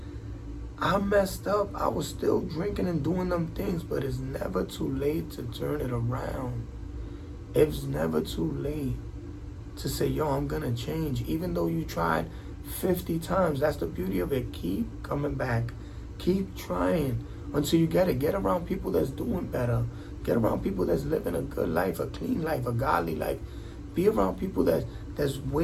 I messed up. I was still drinking and doing them things, but it's never too late to turn it around. It's never too late to say, yo, I'm gonna change. Even though you tried 50 times, that's the beauty of it. Keep coming back. Keep trying until you get it. Get around people that's doing better. Get around people that's living a good life, a clean life, a godly life. Be around people that's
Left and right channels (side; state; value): both; identical; correlation 1.00